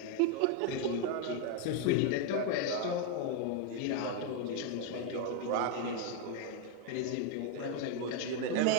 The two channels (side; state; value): both; different; correlation 0.01